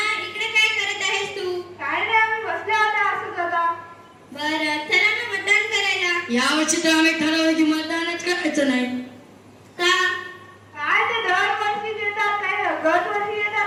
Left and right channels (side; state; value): both; identical; correlation 1.00